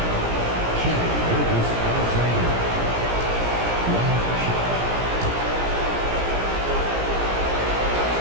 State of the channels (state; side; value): late; left; 17 ms